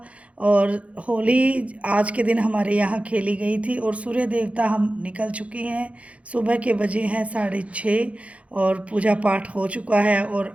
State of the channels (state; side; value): late; left; 0.064 ms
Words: और होली आज के दिन हमारे यहाँ खेली गई थी और सूर्य देवता हम निकल चुके हैं। सुबह के बजे हैं 6:30 और पूजा पाठ हो चुका है। और